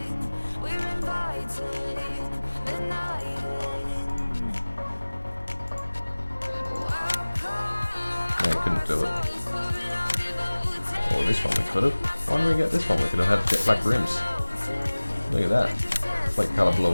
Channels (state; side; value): inverted; both; correlation -1.00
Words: No, you couldn't do it. Or this one we could have. Why didn't we get this one? We could have had jet black rims. Look at that. Flake colour